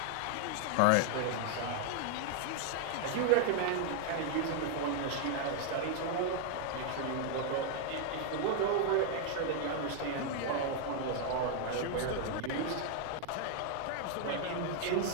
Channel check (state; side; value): different; both; correlation 0.00